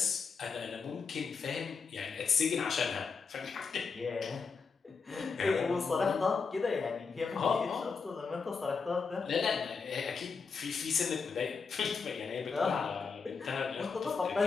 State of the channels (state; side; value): quieter; right; 5.2 dB